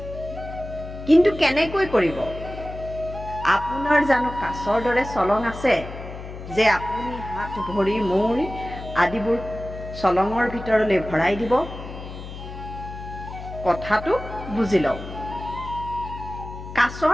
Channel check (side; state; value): left; noise; hum, 11 dB below the sound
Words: কিন্তু কেনেকৈ কৰিব? আপোনাৰ জানো কাছৰ দৰে চলং আছে যে আপুনি হাত, ভৰি, মূৰ আদিবোৰ চলঙৰ ভিতৰলৈ ভৰাই দিব? কথাটো বুজি লওক।